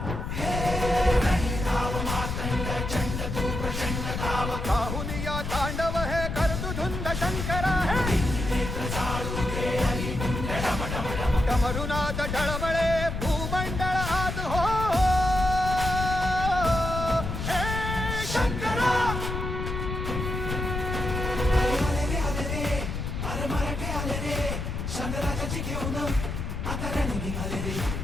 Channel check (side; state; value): left; noise; rumble, 4 dB below the sound